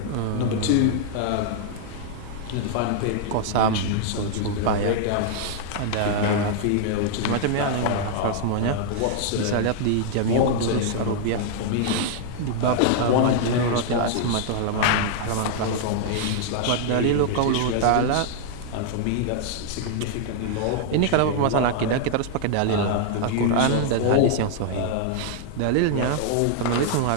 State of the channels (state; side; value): different; both; correlation 0.00